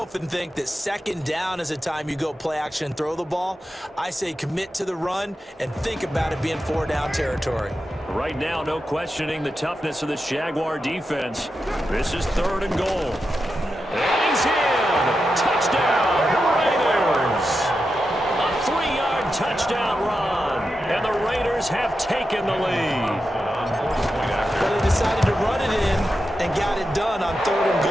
think that 2nd down is a time you go play action and throw the ball. I say commit to the run and think about it being 4 down territory. Right now, no questioning the toughness of this Jaguar defense. This is 3rd and goal. And he's in! Touchdown, Raiders! A 3-yard touchdown run, and the Raiders have taken the lead. But they decided to run it in and got it done on 3rd and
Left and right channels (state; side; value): normal; both; correlation 0.89